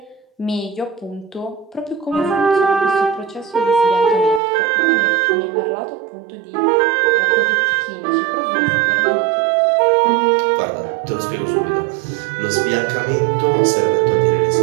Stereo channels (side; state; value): left; drops out; at 4.4 s